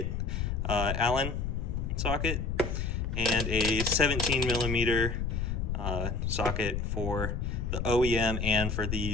Allen socket, and a 17mm socket for the OEM and for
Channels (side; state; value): left; noise; rumble, 1 dB below the sound